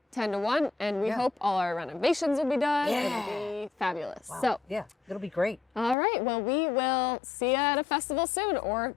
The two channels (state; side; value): drops out; right; at 6.0 s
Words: 10 to 1. And we hope all our renovations will be done. Yeah. It'll be fabulous. Wow. So it'll be great. All right. Well, we will see you at a festival soon or